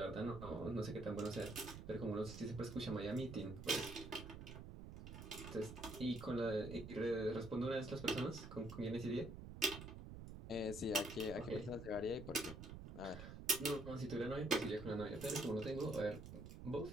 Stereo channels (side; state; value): right; noise; rumble, 10 dB below the sound